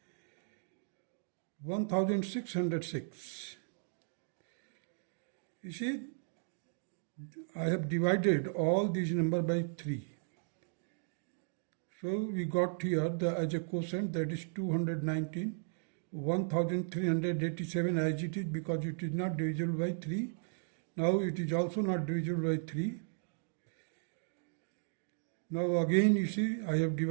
1606. You see, I have divided all these numbers by 3. So we got here as a quotient, that is 219, 1387 as it is, because it is not divisible by 3. Now it is also not divisible by 3. Now again you see I have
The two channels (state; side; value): silent; left; digital silence